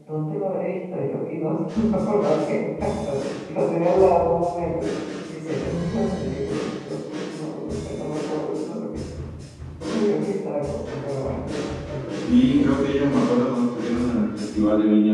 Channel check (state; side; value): identical; both; correlation 1.00